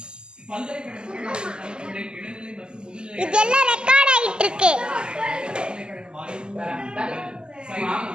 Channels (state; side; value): late; left; 0.048 ms